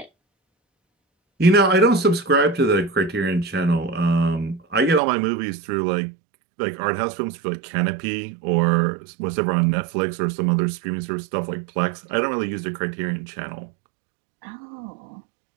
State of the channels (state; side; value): drops out; left; at 5.0 s